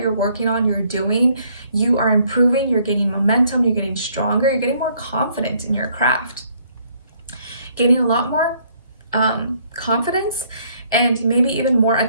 working on, you're doing, you are improving, you're gaining momentum, you're getting stronger, you're getting more confident in your craft, gaining a lot more confidence, and maybe even more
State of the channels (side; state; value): both; inverted; correlation -0.66